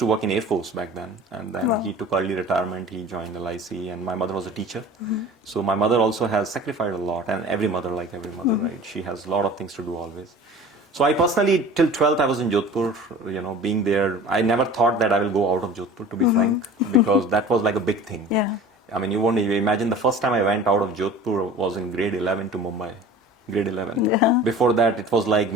to work in Air Force back then, and then he took early retirement, he joined LIC, and my mother was a teacher. So my mother also has sacrificed a lot, and every mother, like every mother, right? She has a lot of things to do always. So I personally, till 12th, I was in Jodhpur, being there. I never thought that I will go out of Jodhpur, to be frank, because that was like a big thing. Yeah. I mean, you won't even imagine the first time I went out of Jodhpur was in grade 11 to Mumbai. Grade 11. Yeah. Before that, it was like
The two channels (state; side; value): normal; both; correlation 0.41